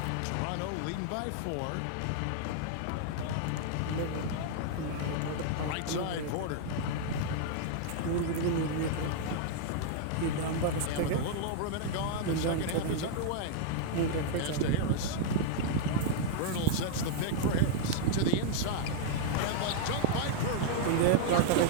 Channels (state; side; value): different; both; correlation -0.01